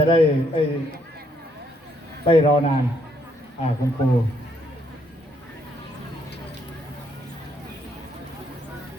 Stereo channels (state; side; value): normal; both; correlation 0.71